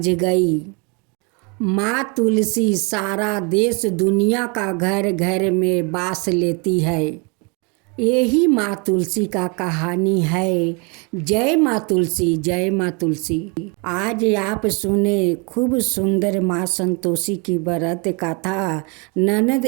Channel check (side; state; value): left; quieter; 32.6 dB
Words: गई। माँ तुलसी सारा देश दुनिया का घर घर में बास लेती है। यही माँ तुलसी का कहानी है। जय माँ तुलसी, जय माँ तुलसी। आज आप सुने खूब सुंदर माँ संतोषी की व्रत कथा ननद